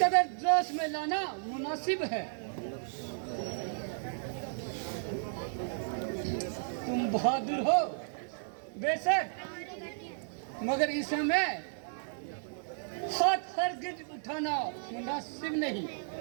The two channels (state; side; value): silent; left; digital silence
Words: कदर जोश में लाना मुनासिब है। तुम बहादुर हो बेशक, मगर इस समय हाथ हरगिज उठाना मुनासिब नहीं।